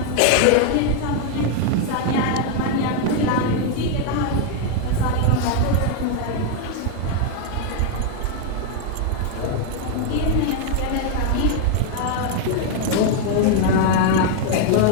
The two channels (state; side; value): different; both; correlation 0.00